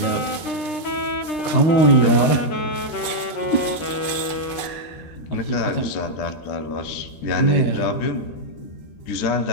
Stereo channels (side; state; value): right; late; 13 ms